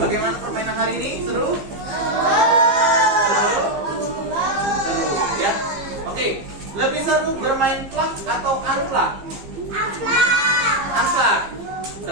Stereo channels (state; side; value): late; left; 15 ms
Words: permainan hari ini? Seru? Seru, ya. Oke, lebih seru bermain plak atau unplak? Unplak.